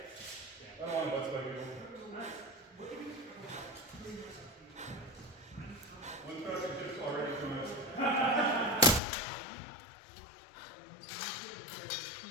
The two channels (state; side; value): drops out; right; at 9.0 s